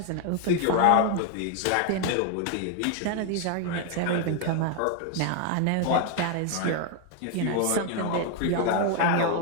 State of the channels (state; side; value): different; both; correlation 0.00